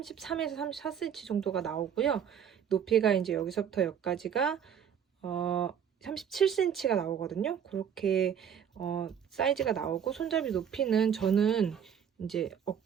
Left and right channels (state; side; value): quieter; left; 8.3 dB